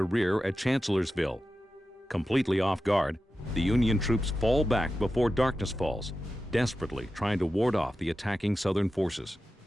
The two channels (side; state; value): both; normal; correlation 0.92